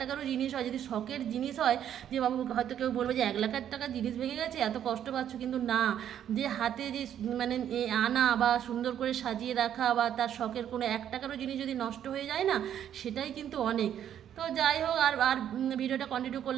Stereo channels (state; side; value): quieter; left; 10.0 dB